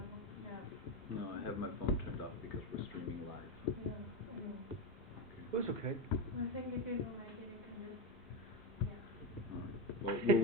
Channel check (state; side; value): normal; both; correlation 0.13